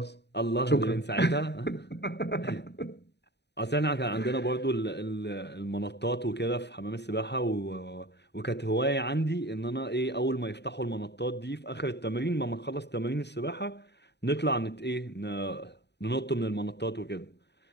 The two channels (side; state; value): right; late; 0.50 ms